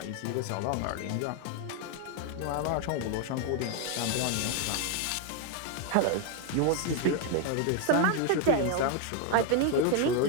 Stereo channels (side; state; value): both; different; correlation 0.01